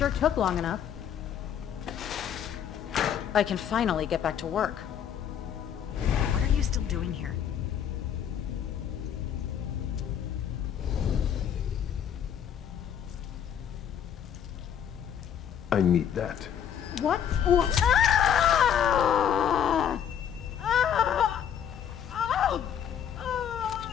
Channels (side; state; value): right; quieter; 9.0 dB